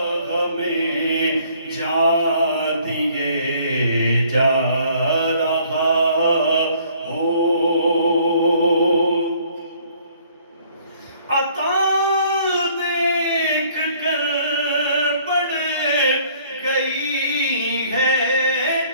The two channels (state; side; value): inverted; both; correlation -0.60